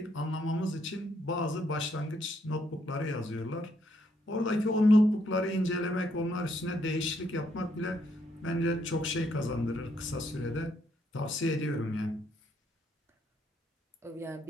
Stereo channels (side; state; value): both; normal; correlation 0.73